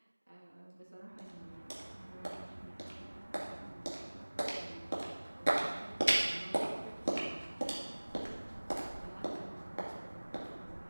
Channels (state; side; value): inverted; both; correlation -1.00